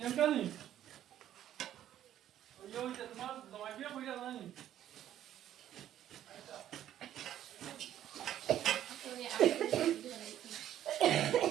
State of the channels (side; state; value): left; quieter; 11.6 dB